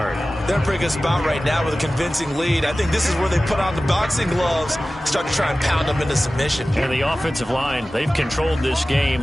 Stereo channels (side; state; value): both; normal; correlation 0.96